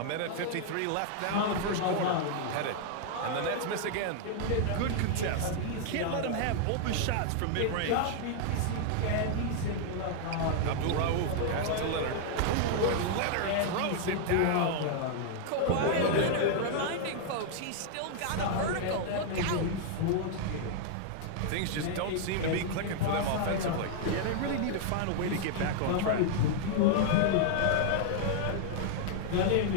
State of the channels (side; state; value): both; different; correlation -0.01